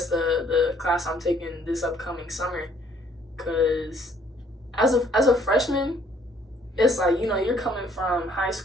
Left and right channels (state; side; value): normal; both; correlation 0.62